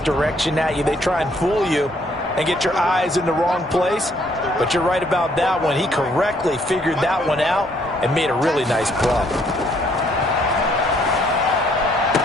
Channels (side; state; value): both; normal; correlation 0.67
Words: at you. They try and fool you and get your eyes in the wrong place. But you're right about that one. He correctly figured that one out and made a really nice play.